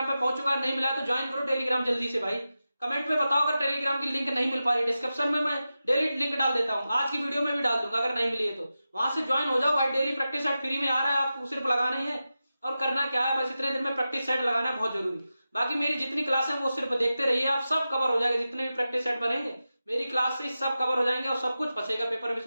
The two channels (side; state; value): both; inverted; correlation -0.92